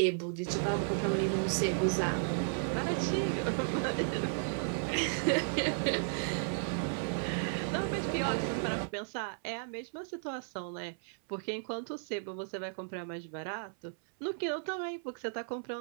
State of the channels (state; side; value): silent; left; 55 dB below the other